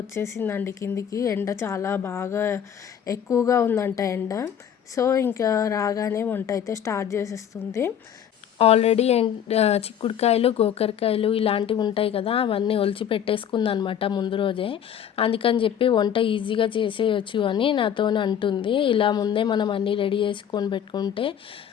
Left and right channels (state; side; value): quieter; right; 9.0 dB